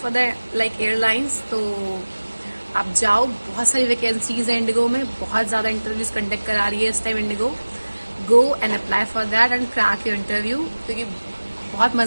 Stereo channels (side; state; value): both; inverted; correlation -1.00